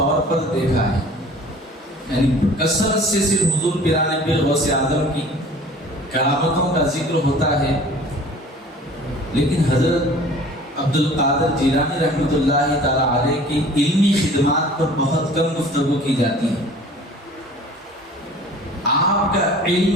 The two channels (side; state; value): both; normal; correlation 0.47